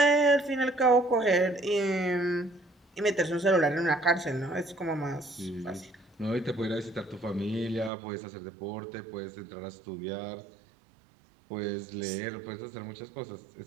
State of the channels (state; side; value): drops out; left; at 7.9 s